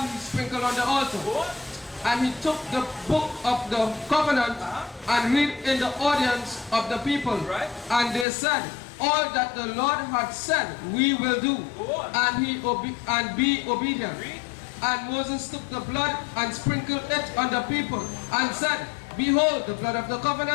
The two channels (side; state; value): right; drops out; at 8.2 s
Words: he sprinkled on the altar. And he took the book of the covenant and read in the audience of the people. Right. And they said, all that the Lord had said we will do, and be obedient. Read. And Moses took the blood and sprinkled it on the people, and said, behold the blood of the